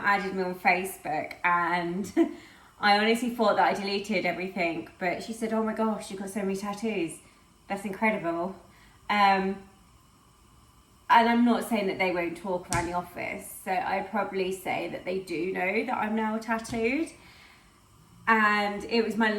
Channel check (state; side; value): identical; both; correlation 1.00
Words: me on Facebook and I honestly thought that I deleted everything, but she said, oh my gosh, you've got so many tattoos. That's incredible. And I'm not saying that they won't talk around the office, so I'd probably say that they do know that I'm now tattooed. And it was my